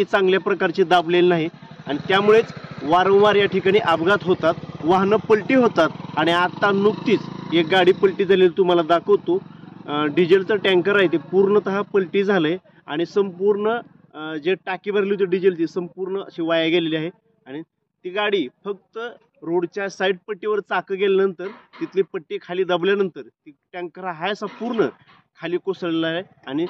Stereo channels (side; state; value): both; identical; correlation 1.00